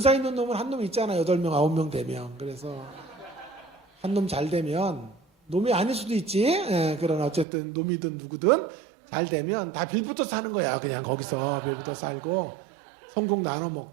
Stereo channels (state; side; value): drops out; left; at 7.5 s